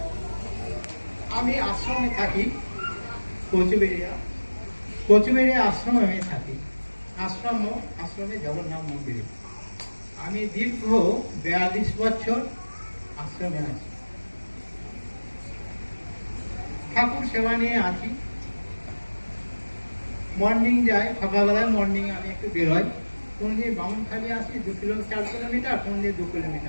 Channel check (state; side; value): inverted; both; correlation -1.00